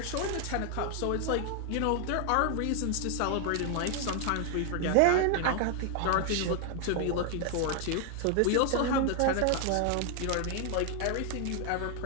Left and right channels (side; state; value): both; different; correlation 0.00